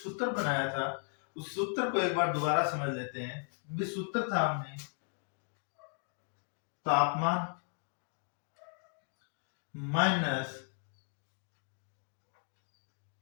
बनाया था उस सूत्र को एक बार दोबारा समझ लेते हैं। ये सूत्र था हमने तापमान माइनस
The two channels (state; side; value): silent; right; 54 dB below the other